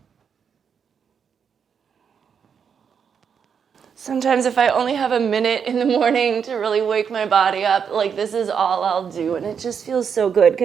Sometimes if I only have a minute in the morning to really wake my body up, like this is all I'll do. And it just feels so good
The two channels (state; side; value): quieter; left; 7.0 dB